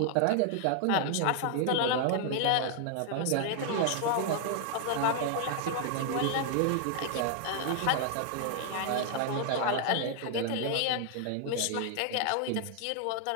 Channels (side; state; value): both; different; correlation 0.00